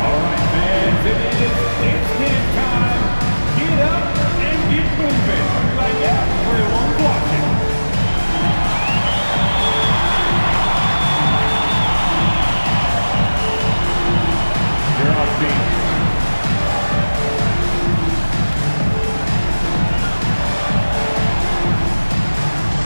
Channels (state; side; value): inverted; both; correlation -1.00